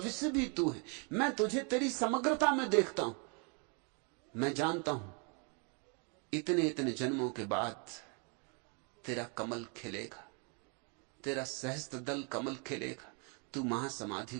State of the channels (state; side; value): quieter; left; 35.9 dB